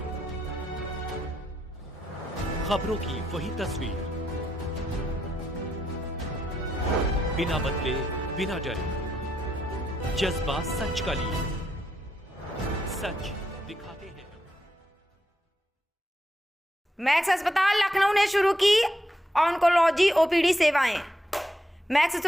खबरों की वही तस्वीर, बिना बदले बिना डरे, जज्बा सच का लिए, सच दिखाते हैं। मैक्स अस्पताल लखनऊ ने शुरू की ऑन्कोलॉजी ओपीडी सेवाएं। Max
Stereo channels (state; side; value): normal; both; correlation 0.80